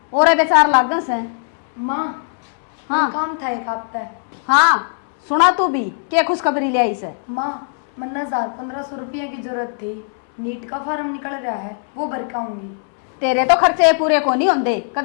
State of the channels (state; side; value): silent; right; 66 dB below the other